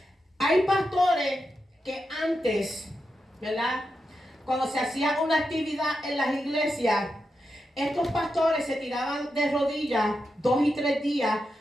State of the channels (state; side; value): normal; both; correlation 0.87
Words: Hay pastores que antes, ¿verdad? Cuando se hacía una actividad en las iglesias, estos pastores se tiraban de rodillas 2 y 3 días